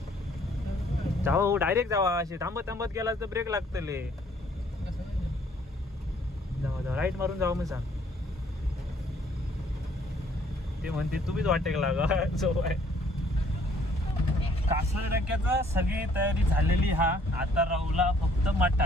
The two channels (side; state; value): both; normal; correlation 0.61